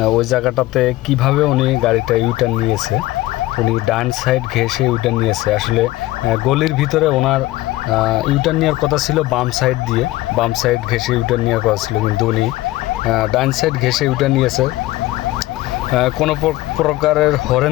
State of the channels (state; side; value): quieter; right; 17.5 dB